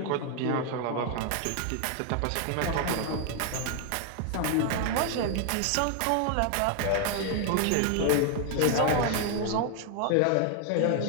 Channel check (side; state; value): both; different; correlation 0.00